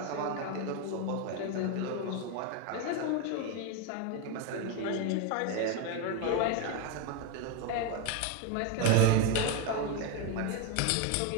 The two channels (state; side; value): different; both; correlation 0.01